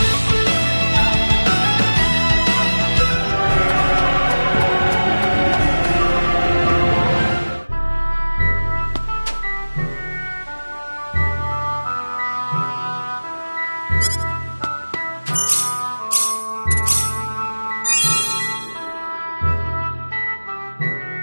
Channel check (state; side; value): inverted; both; correlation -1.00